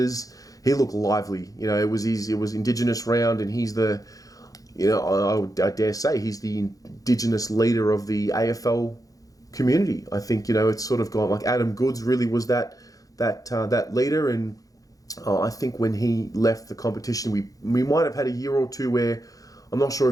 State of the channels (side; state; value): right; late; 0.17 ms